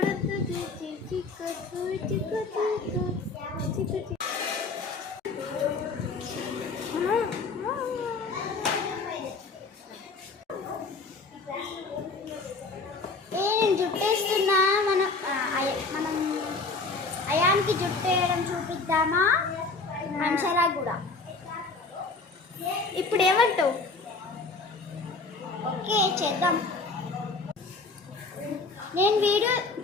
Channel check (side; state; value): right; quieter; 3.8 dB